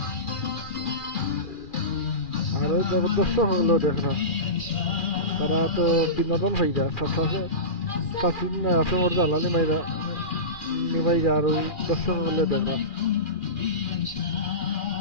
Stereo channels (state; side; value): late; right; 2.4 ms